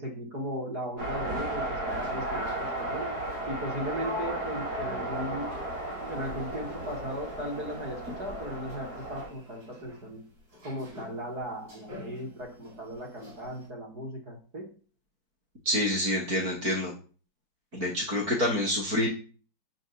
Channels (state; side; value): late; left; 4.6 ms